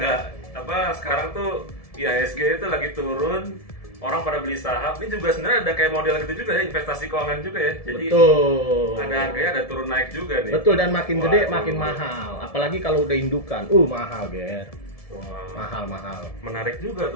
sekarang tuh IHSG itu lagi turun. Orang pada beli saham, ini juga sebenarnya ada kayak model gitu juga ya, investasi keuangan juga ya. Jadi betul. Ada harganya, ada turun naik juga nih. Betul, dan makin gede makin mahal. Apalagi kalau udah indukan. Mahal, Ger. Mahal. Menarik juga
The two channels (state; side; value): late; right; 1.7 ms